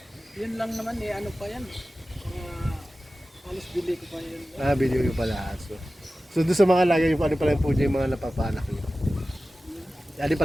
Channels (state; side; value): normal; both; correlation 0.95